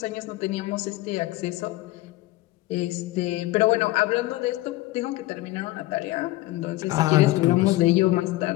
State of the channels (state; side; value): quieter; right; 18.0 dB